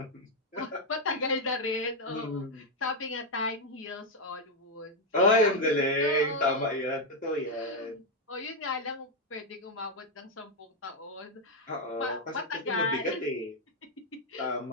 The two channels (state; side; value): normal; both; correlation 0.03